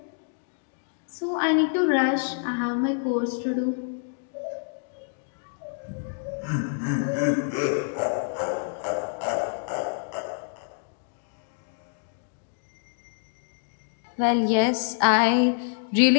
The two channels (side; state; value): right; silent; 60 dB below the other